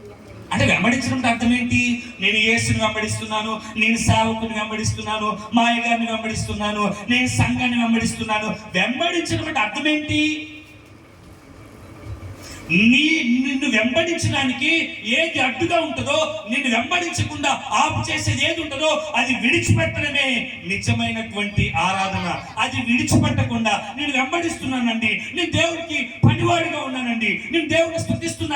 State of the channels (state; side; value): identical; both; correlation 1.00